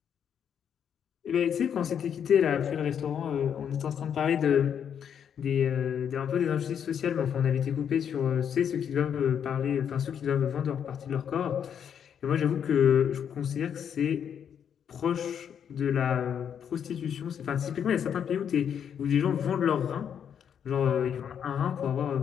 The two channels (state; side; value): quieter; right; 8.3 dB